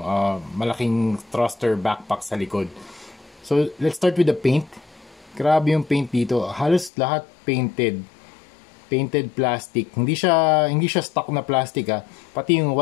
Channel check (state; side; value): drops out; right; at 6.9 s